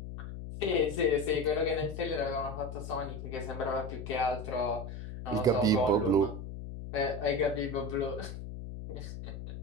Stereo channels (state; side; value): noise; left; hum, 8 dB below the sound